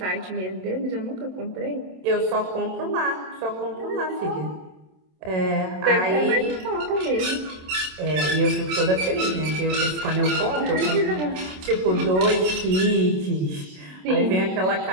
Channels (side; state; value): left; late; 27 ms